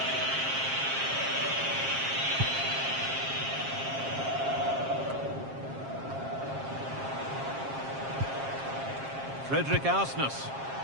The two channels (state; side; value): late; left; 7.5 ms